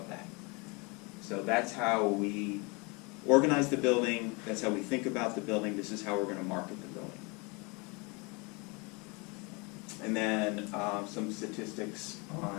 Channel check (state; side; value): quieter; right; 28.9 dB